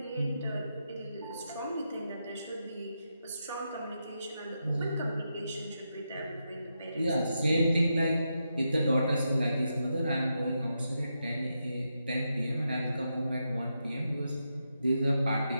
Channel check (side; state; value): both; inverted; correlation -0.85